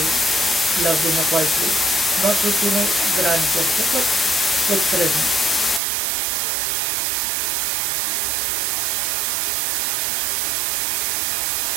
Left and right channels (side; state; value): left; drops out; at 5.8 s